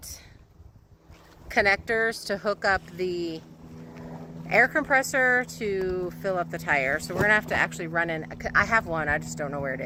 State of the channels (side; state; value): both; identical; correlation 1.00